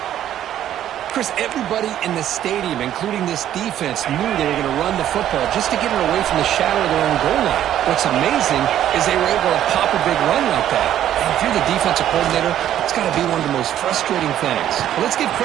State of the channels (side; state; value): left; quieter; 11.4 dB